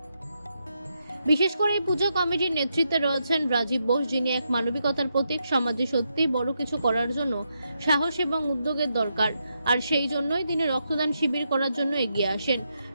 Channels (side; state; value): both; inverted; correlation -0.82